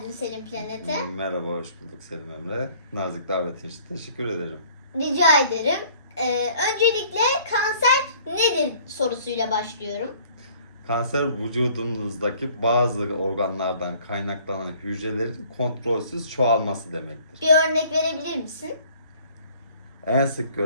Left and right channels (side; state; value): both; inverted; correlation -0.55